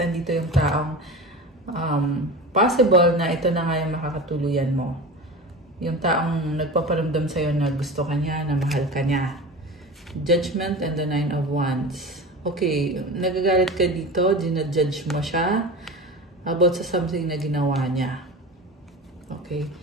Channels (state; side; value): normal; both; correlation 0.31